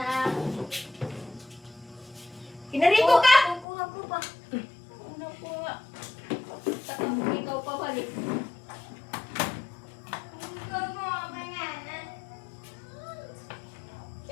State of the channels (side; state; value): right; drops out; at 3.7 s